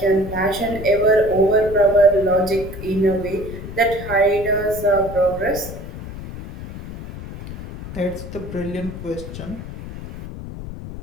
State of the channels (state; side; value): noise; left; rumble, 10 dB below the sound